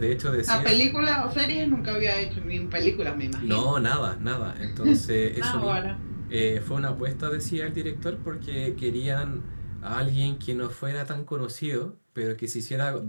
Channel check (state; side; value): inverted; both; correlation -1.00